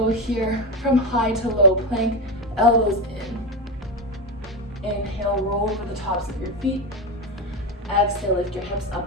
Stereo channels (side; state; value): both; normal; correlation 0.16